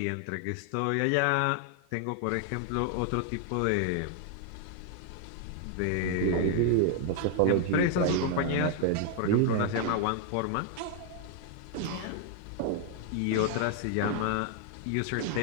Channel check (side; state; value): both; different; correlation 0.00